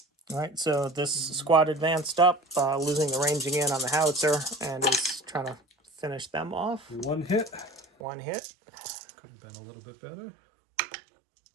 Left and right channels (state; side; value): drops out; left; at 7.9 s